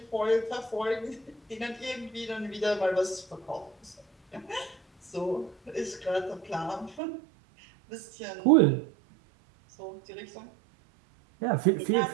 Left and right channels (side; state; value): left; drops out; at 7.0 s